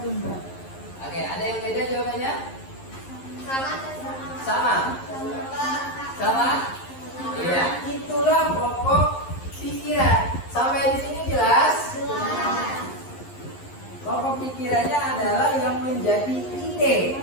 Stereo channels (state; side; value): late; right; 11 ms